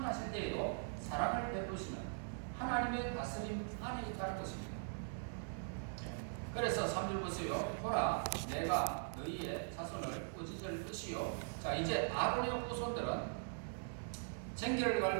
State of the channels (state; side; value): silent; left; digital silence